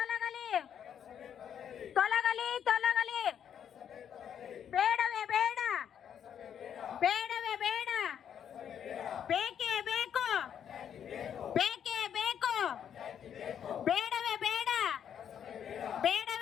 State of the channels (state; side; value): quieter; right; 8.8 dB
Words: ತೊಲಗಲಿ ತೊಲಗಲಿ, ಬೇಡವೇ ಬೇಡ, ಬೇಡವೇ ಬೇಡ, ಬೇಕೇ ಬೇಕು, ಬೇಕೇ ಬೇಕು, ಬೇಡವೇ ಬೇಡ,